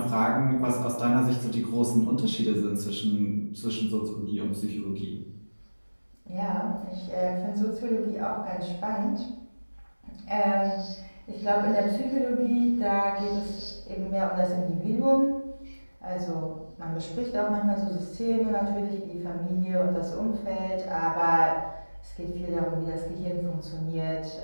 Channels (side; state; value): both; inverted; correlation -1.00